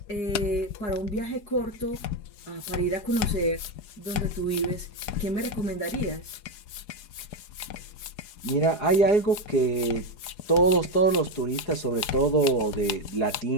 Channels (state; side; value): late; right; 4.8 ms